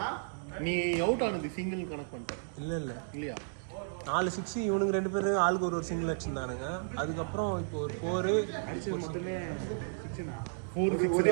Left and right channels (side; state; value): left; silent; digital silence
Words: நீ அவுட் ஆனது சிங்கிள் கனெக்ட் பண்ணிட்ட இல்ல இல்ல இல்லையா 4 6 இவனுக்கு ரெண்டு பேரும் ஆளுக்கு ஒரு சிங்கிள் அடிச்சிருந்தானுங்க அதுக்கப்புறம் இப்போ ஒரு 4 அடிச்சது மொத்தமே 6 னா 4 ஒரு